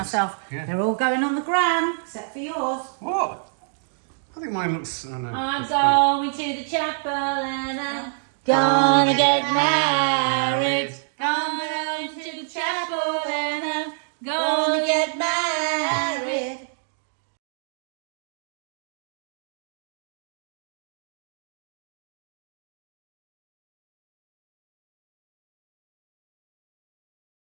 Yeah. They're all going on the gram, except for yours. What? I think mine looks... I know. I'm it's good. going to the chapel and I'm gonna get married. Gonna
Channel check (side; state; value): left; silent; digital silence